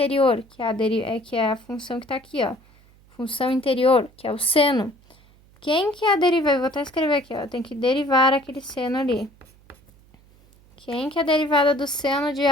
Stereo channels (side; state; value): right; noise; hum, 28 dB below the sound